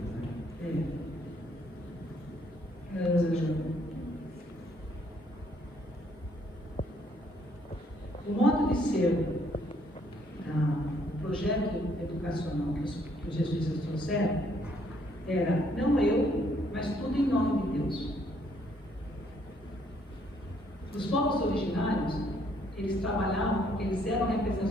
Né? O modo de ser, o projeto educacional que os jesuítas trouxeram era não eu, mas tudo em nome de Deus. Os povos originários, eles trabalhavam porque eles eram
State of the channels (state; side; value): normal; both; correlation 0.67